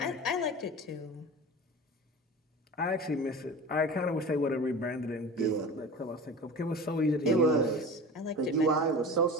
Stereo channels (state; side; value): normal; both; correlation 0.34